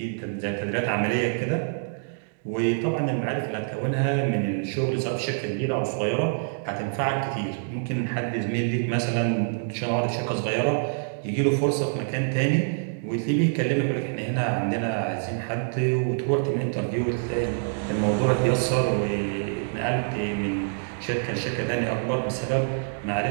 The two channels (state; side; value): silent; left; digital silence